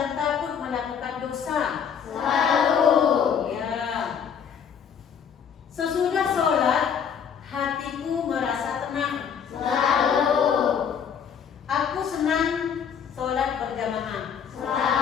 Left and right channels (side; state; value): right; quieter; 7.5 dB